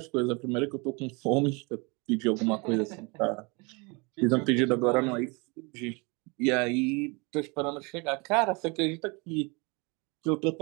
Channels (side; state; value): left; quieter; 29.5 dB